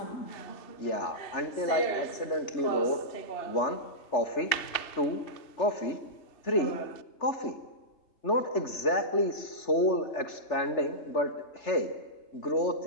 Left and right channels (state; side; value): late; right; 3.4 ms